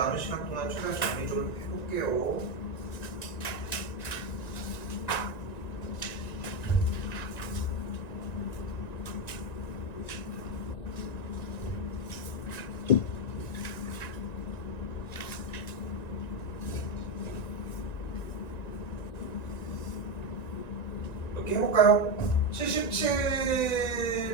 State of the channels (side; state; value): right; late; 1.9 ms